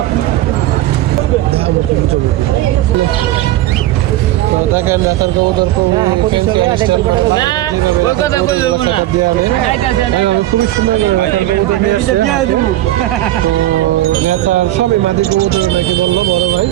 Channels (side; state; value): left; quieter; 15.0 dB